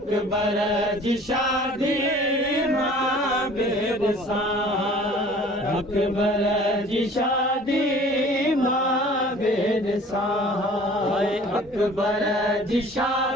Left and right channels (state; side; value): normal; both; correlation 0.49